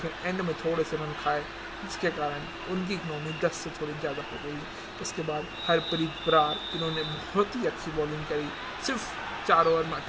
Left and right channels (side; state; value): both; identical; correlation 1.00